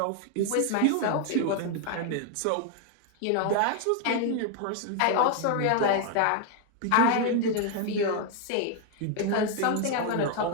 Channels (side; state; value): both; different; correlation 0.01